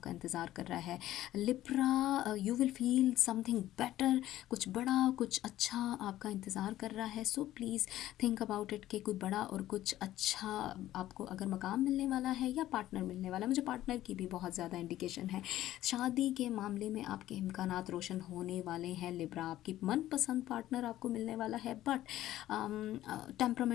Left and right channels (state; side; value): quieter; right; 14.1 dB